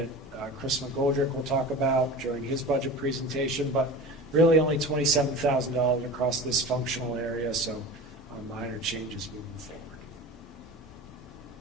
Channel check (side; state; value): both; normal; correlation 0.33